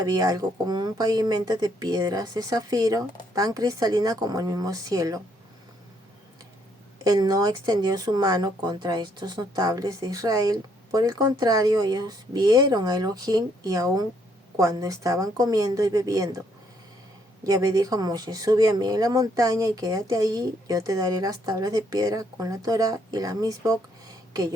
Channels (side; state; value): both; normal; correlation 0.70